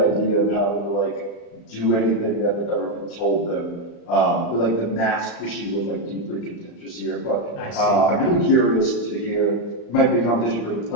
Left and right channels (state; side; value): late; right; 35 ms